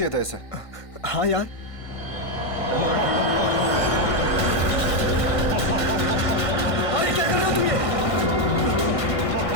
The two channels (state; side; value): late; right; 1.5 ms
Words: था इसे। हाँ यार, अरे क्या कर रहे हो तुम? ये